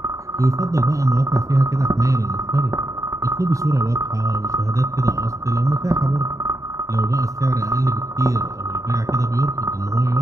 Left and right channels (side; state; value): left; late; 0.16 ms